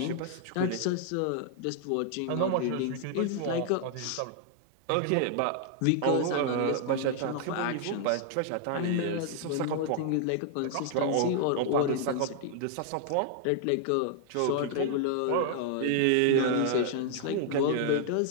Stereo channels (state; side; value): different; both; correlation 0.00